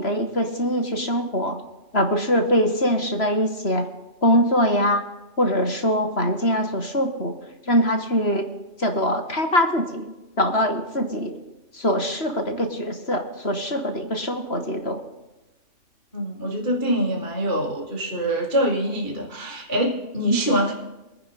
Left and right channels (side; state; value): right; late; 3.0 ms